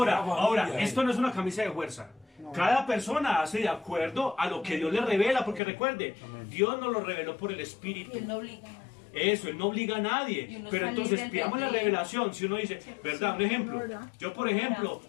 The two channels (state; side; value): drops out; right; at 5.6 s